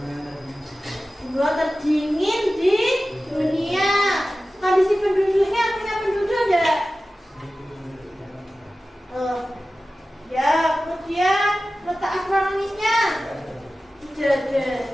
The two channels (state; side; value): normal; both; correlation 0.95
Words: gua terdingin di dunia. Kondisi penduduknya, punya penduduk enggak? Ya, kemudian letak astronomisnya tidak